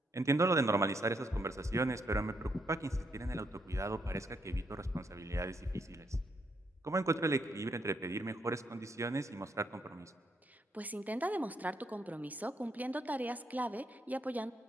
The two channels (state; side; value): normal; both; correlation 0.76